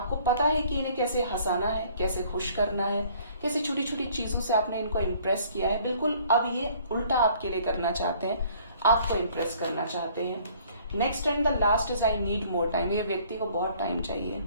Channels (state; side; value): inverted; both; correlation -0.57